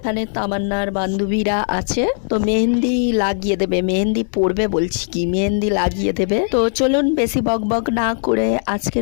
তামান্নার বান্ধবীরা আছে, তো মেহেন্দি লাগিয়ে দেবে। মেহেন্দি পড়বে বলছি কি, মেহেন্দি লাগিয়ে দেবে। তো চলুন বেশি বক বক না করে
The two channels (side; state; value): right; silent; digital silence